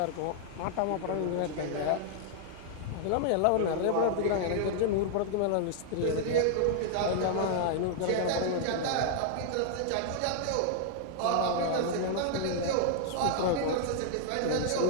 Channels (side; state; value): both; different; correlation -0.01